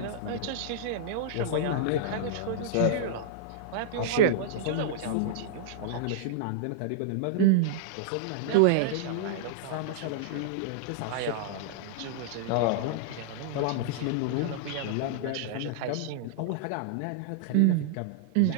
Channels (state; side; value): different; both; correlation -0.02